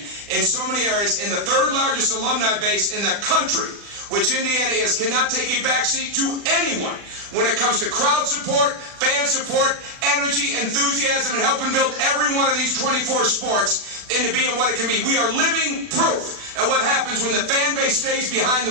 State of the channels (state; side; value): late; left; 40 ms